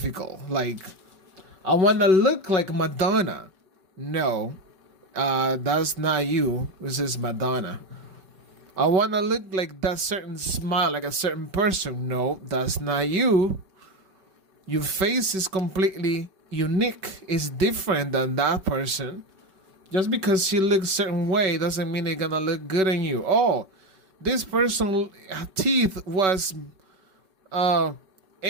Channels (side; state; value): left; late; 5.3 ms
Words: Like, I want to look like Madonna. No, that's not you. This is Madonna. I want to look like that certain smile, like a certain person. No, that's not you. Your face is completely unique. It's different than that person. Just because she looks a certain way doesn't mean they're gonna look good on you. Oh, this person's teeth was a